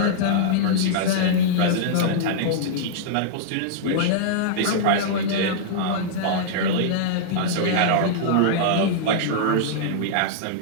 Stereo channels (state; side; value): different; both; correlation -0.02